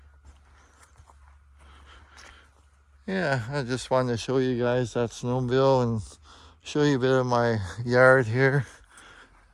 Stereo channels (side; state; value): both; identical; correlation 1.00